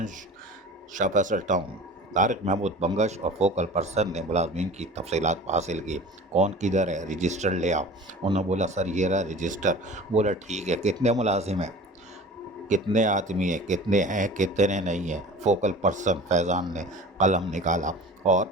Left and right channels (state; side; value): normal; both; correlation 0.40